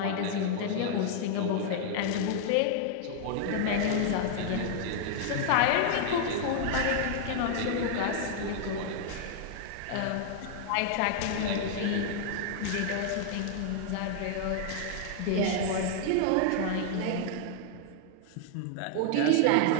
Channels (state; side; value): different; both; correlation 0.00